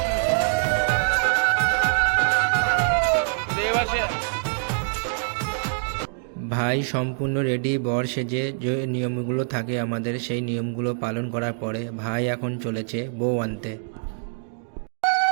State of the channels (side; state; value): left; silent; digital silence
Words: ভাই সম্পূর্ণ রেডি বর সেজে। যে নিয়মগুলো থাকে আমাদের, সেই নিয়মগুলো পালন করার পরে ভাই এখন চলেছে বউ আনতে।